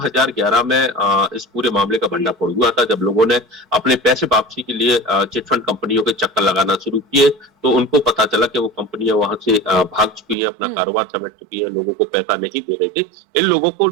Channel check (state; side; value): drops out; left; at 10.4 s